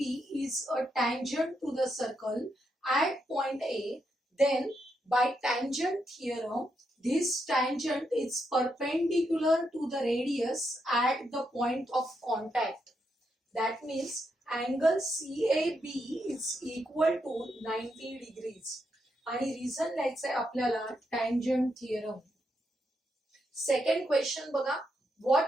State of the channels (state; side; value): normal; both; correlation 0.81